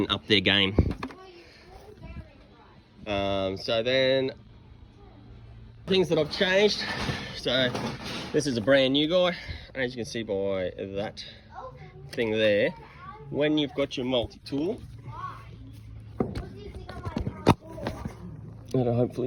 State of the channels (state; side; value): identical; both; correlation 1.00